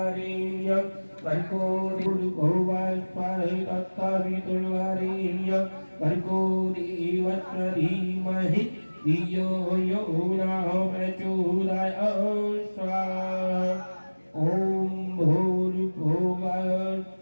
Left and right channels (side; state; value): both; inverted; correlation -1.00